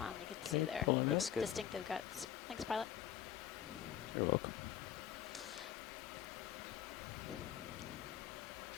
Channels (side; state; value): right; quieter; 10.6 dB